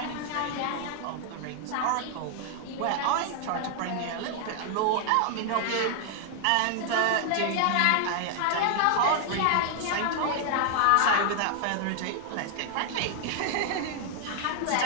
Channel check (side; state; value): both; different; correlation 0.00